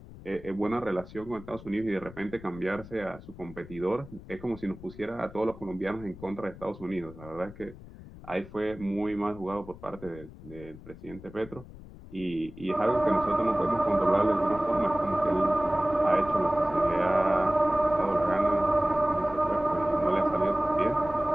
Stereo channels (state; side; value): noise; left; rumble, 17 dB below the sound